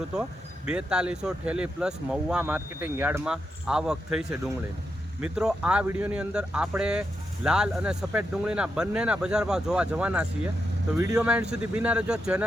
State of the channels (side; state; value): both; normal; correlation 0.85